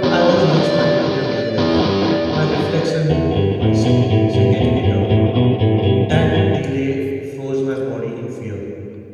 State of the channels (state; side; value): identical; both; correlation 1.00